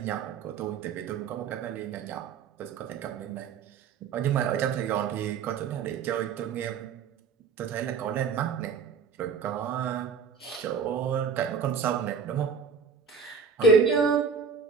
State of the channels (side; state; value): left; quieter; 5.9 dB